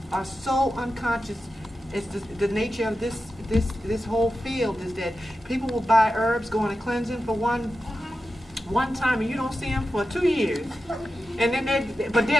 are so unconscious. It's the nature of this whole field is that people will buy herbs, go on a cleansing for one time, and you don't see them for 2 years. And then but they're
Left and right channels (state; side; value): normal; both; correlation 0.91